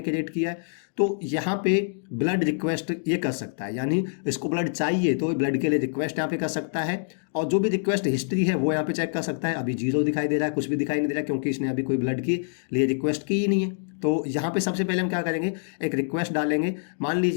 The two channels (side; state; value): right; silent; digital silence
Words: क्रिएट किया है। तो यहाँ पे ब्लड रिक्वेस्ट ये कर सकता है, यानी इसको ब्लड चाहिए तो ब्लड के लिए रिक्वेस्ट यहाँ पे कर सकता है और जो भी रिक्वेस्ट हिस्ट्री है वो यहाँ पे चेक कर सकता है। अभी 0 दिखाई दे रहा है, कुछ भी दिखाई नहीं दे रहा क्योंकि इसने अभी कोई ब्लड के लिए रिक्वेस्ट की ही नहीं है। तो यहाँ पे सबसे पहले हम क्या करेंगे, एक रिक्वेस्ट डालेंगे। मान